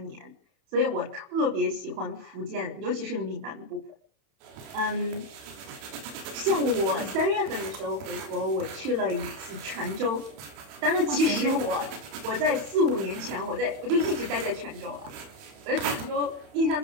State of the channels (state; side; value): late; left; 31 ms